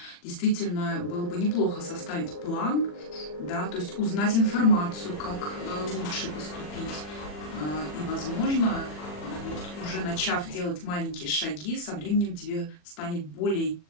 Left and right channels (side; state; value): right; late; 40 ms